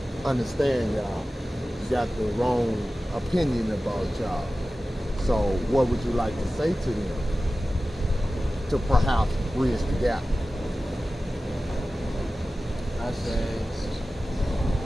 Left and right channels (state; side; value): normal; both; correlation 0.95